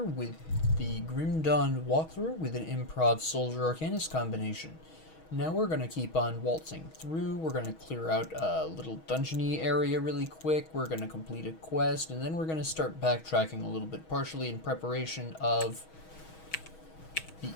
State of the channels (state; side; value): late; right; 6.3 ms